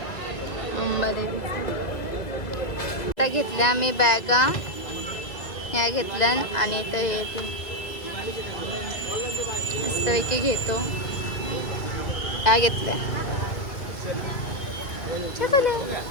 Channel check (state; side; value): late; right; 2.1 ms